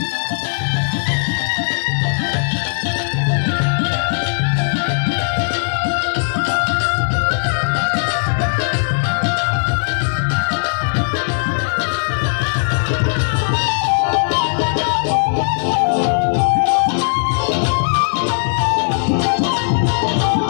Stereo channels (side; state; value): right; silent; 68 dB below the other